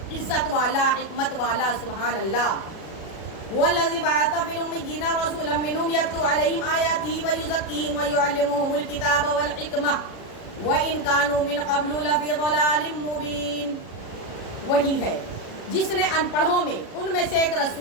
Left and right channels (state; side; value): late; right; 36 ms